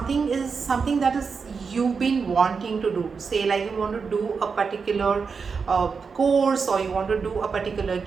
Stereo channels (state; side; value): quieter; left; 5.3 dB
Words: that is you've been wanting to do. Say like you want to do a particular course, or you want to do a particular